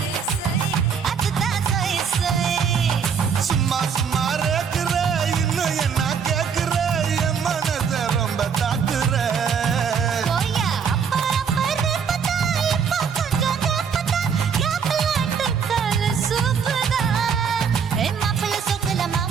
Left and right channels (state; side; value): quieter; left; 6.7 dB